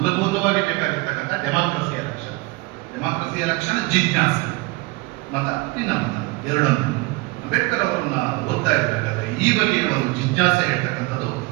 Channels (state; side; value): quieter; left; 23.7 dB